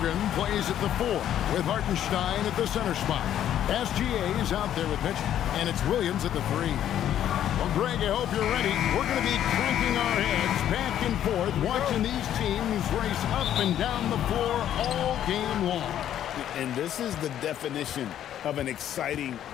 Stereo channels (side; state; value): right; quieter; 10.9 dB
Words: plays at the 4 with Hartenstein at the center spot. SGA is out there with Mitchell, and it's Williams at the 3. Well, Greg, I hope you're ready. We're going to be cranking our heads back and forth, watching these teams race up and down the floor all game long. And this is the definition of an exciting